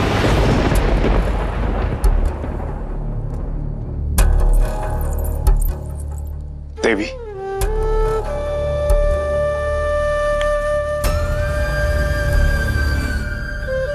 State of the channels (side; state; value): both; identical; correlation 1.00